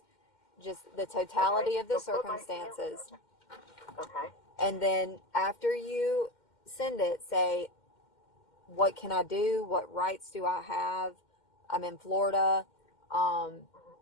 just the totality of the circumstances. Okay. And then after you send it, say, what can I do? What rights do I have? I'm in Florida.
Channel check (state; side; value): late; right; 2.1 ms